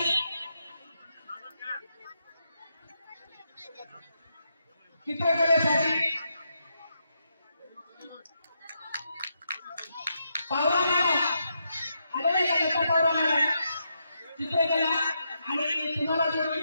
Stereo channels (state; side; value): inverted; both; correlation -0.82